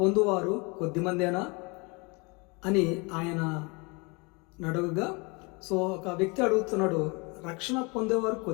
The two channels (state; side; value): quieter; right; 29.0 dB